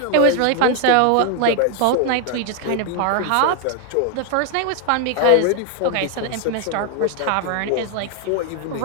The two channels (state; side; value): different; both; correlation 0.00